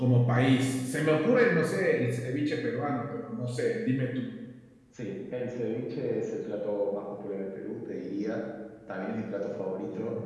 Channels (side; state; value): both; identical; correlation 1.00